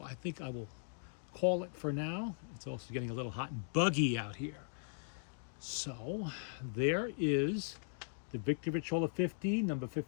I think I will call it for now. It's also getting a little hot and buggy out here. So there is the Victor Victrola 50, number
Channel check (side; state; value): right; silent; digital silence